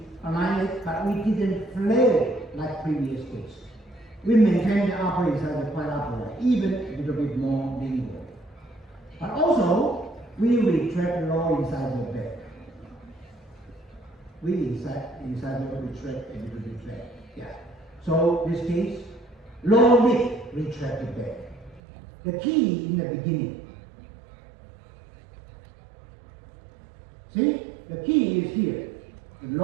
align it, but we didn't flare it like previous case. We maintain the upper incisor quite upright, even a little bit more lingual. But also, we retract the lower incisor back. We incisor retract a little bit back. Yeah. So this case, lower lip retracted back. The key in the beginning. See, the key is here, the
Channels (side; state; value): left; drops out; at 21.8 s